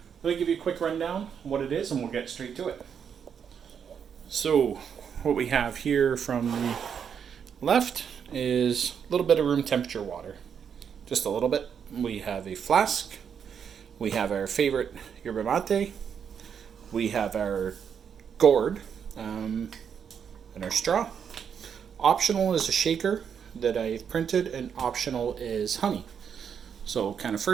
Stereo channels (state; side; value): quieter; left; 7.5 dB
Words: let me give you a quick rundown on what it is and we'll get straight to it. So what we have here from the left is a little bit of room temperature water. Just a little bit. We have a flask. We have our favorite yerba mate. We have our gourd and our straw. Optional is a shaker that I've printed, and optional is honey. So kind of